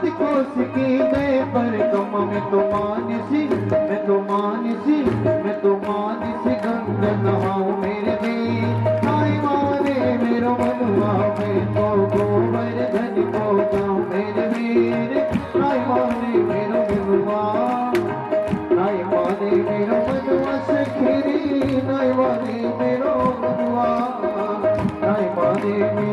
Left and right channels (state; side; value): identical; both; correlation 1.00